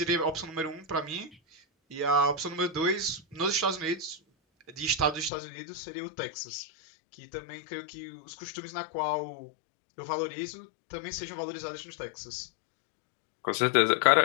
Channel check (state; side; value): drops out; right; at 5.3 s